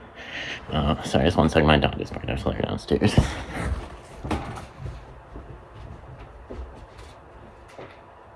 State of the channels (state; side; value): identical; both; correlation 1.00